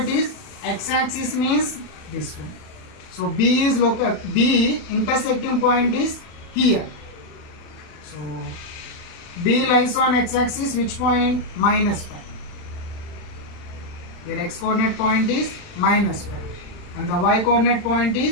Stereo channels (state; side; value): late; right; 39 ms